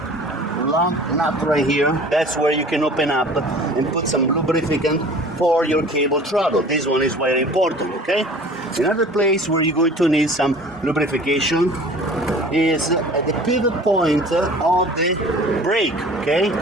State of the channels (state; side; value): normal; both; correlation 0.45